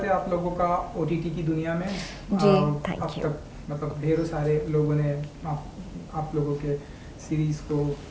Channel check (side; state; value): both; identical; correlation 1.00